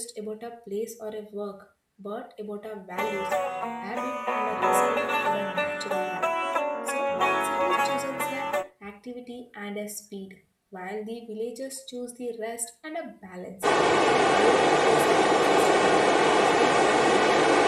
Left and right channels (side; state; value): both; identical; correlation 1.00